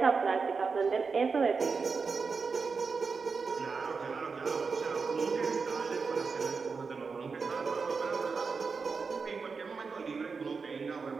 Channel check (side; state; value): left; quieter; 4.9 dB